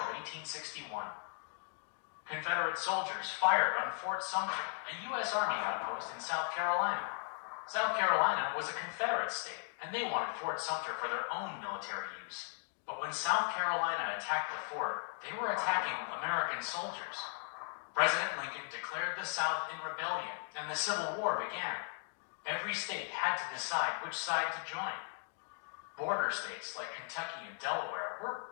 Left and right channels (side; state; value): right; silent; 53 dB below the other